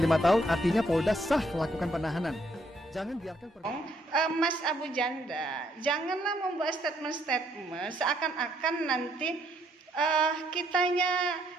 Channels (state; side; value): normal; both; correlation 0.70